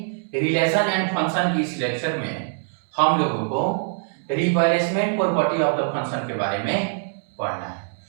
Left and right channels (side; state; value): left; silent; 63 dB below the other